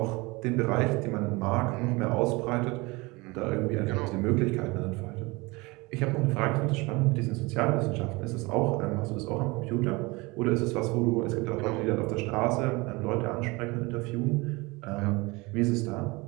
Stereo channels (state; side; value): quieter; left; 24.5 dB